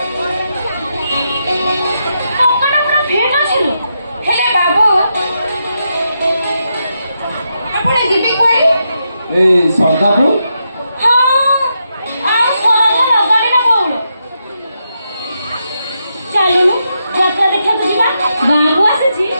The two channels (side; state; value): both; inverted; correlation -0.83